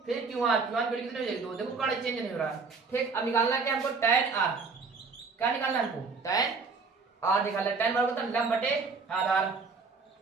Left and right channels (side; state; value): left; quieter; 4.6 dB